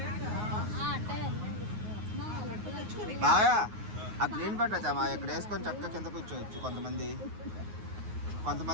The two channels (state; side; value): late; left; 9.5 ms